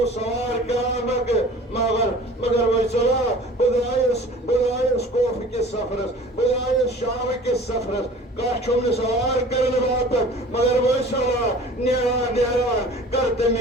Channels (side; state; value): both; normal; correlation 0.44